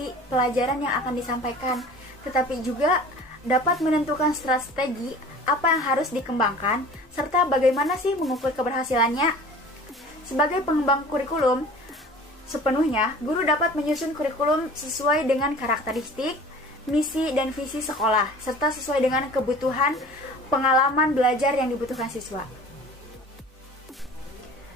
pelajaran yang akan disampaikan, tetapi juga dapat menentukan strategi apa yang harus dikembangkan, serta bagaimana sih mengukur keberhasilannya. Sebagai pengembang kurikulum, sepenuhnya guru dapat menyusun kurikulum sesuai dengan karakteristik, misi, dan visi sekolah, serta sesuai dengan kebutuhan pengalaman belajar yang dibutuhkan siswa.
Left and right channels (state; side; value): normal; both; correlation 0.44